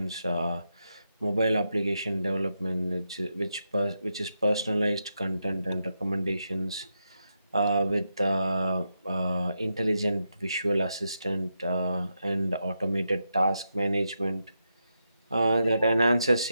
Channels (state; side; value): inverted; both; correlation -0.85